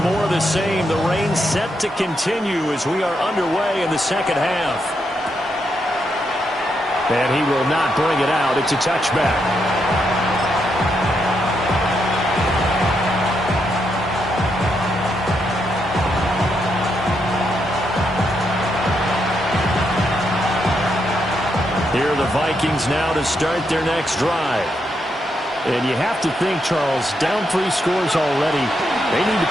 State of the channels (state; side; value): normal; both; correlation 0.80